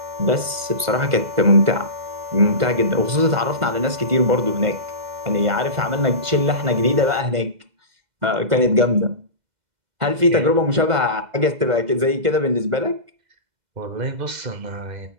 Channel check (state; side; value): late; left; 2.0 ms